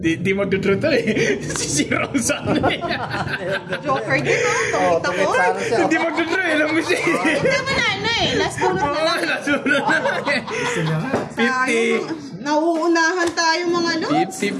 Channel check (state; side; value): identical; both; correlation 1.00